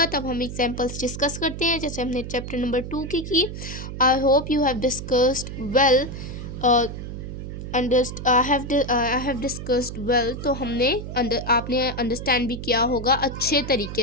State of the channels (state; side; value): noise; right; hum, 8 dB below the sound